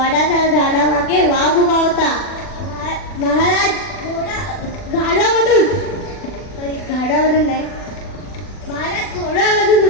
झाडामागे वाघ उभा होता. महाराज घाडामधून नाही, महाराज घोड्यामधून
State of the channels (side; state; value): right; late; 40 ms